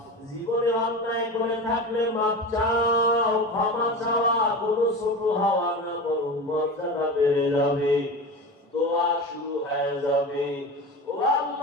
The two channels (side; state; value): both; normal; correlation 0.28